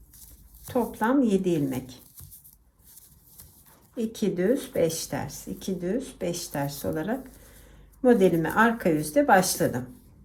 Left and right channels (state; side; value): identical; both; correlation 1.00